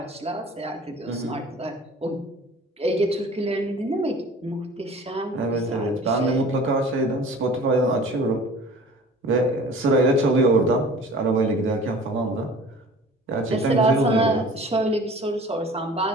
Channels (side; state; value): both; normal; correlation 0.45